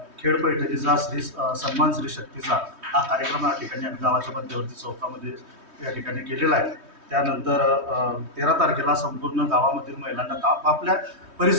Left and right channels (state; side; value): late; left; 3.2 ms